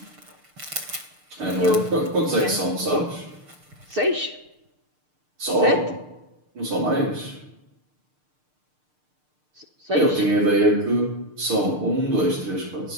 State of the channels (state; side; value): late; left; 6.6 ms